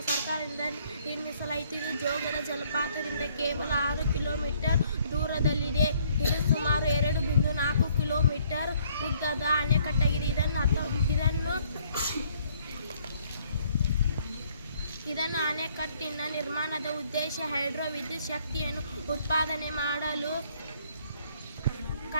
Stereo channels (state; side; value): inverted; both; correlation -0.64